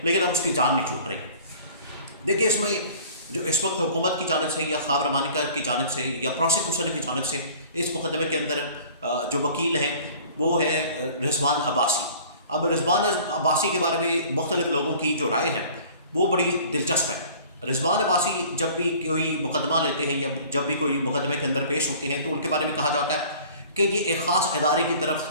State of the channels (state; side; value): inverted; both; correlation -0.48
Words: लेकिन अब उसकी जान नहीं छूट रही। देखिए, इसमें जो इस वक्त हुकूमत की जानिब से या ख्वाब रमानिका की जानिब से या प्रोसिक्यूशन की जानिब से इस मुकदमे के अंदर जो वकील है वो है रिजवान अब्बासी। अब रिजवान अब्बासी के बारे में मुख्तलिफ लोगों की जो राय है वो बड़ी दिलचस्प है। रिजवान अब्बासी जब भी कोई मुकदमा लेते हैं या जब भी कोई मुकदमे के अंदर पेश होते हैं तो उनके बारे में कहा जाता है कि ये एक ख़ास इदारे की तरफ